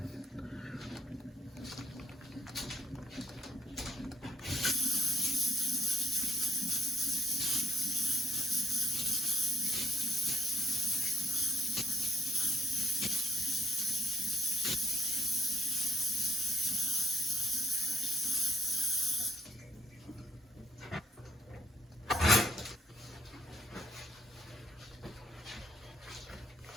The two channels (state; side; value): normal; both; correlation 0.64